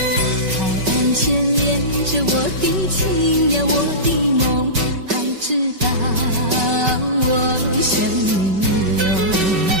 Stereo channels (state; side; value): late; left; 5.2 ms